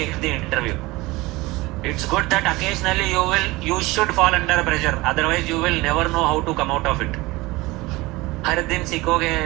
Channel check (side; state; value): left; quieter; 21.0 dB